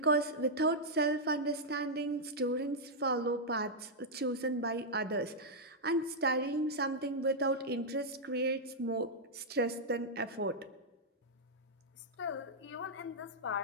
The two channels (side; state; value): both; normal; correlation -0.06